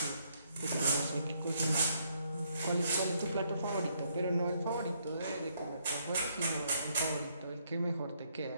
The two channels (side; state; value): both; inverted; correlation -0.73